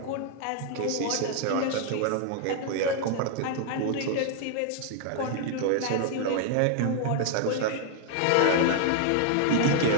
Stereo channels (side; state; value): both; different; correlation 0.00